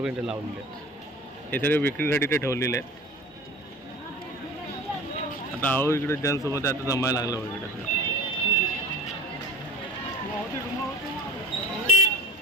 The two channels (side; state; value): both; normal; correlation 0.36